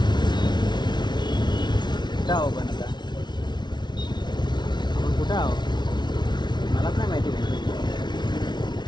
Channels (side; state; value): right; late; 0.21 ms